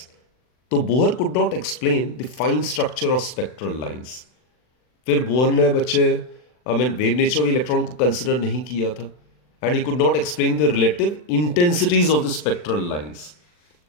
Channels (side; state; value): right; late; 40 ms